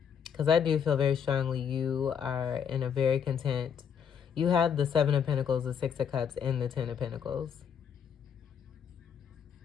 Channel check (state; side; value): quieter; right; 7.6 dB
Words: Because I do feel very strongly you are in a very content. You have the Seven of Pentacles, the Six of Cups, and the Ten of Pentacles.